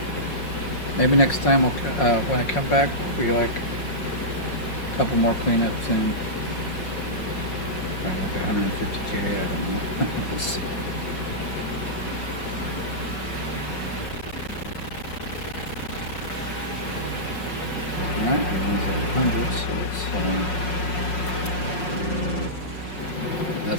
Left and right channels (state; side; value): late; right; 5.5 ms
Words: Maybe next time we'll, when I come back, we like a couple more cleanups and like 150K, I don't know. We'll see. Alright, everyone's at 100, so it's,